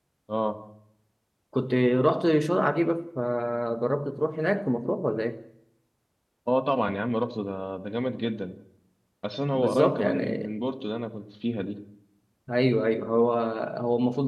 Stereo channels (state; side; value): identical; both; correlation 1.00